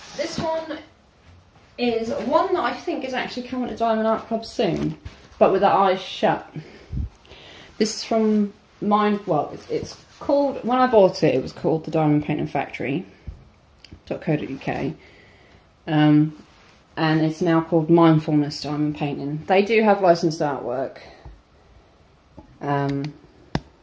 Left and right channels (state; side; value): identical; both; correlation 1.00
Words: This one is one that I think is actually coming to Diamond Art Club soon, but with the eyes shut. This is from it's called, when I bought it, it was called the Diamond Painting Factory.co.uk, and it's now called Mindfulness Diamond Painting. They do have licensed artwork, and